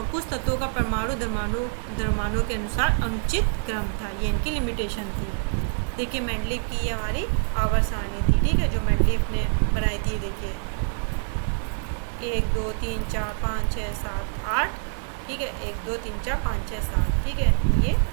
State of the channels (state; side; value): silent; left; 61 dB below the other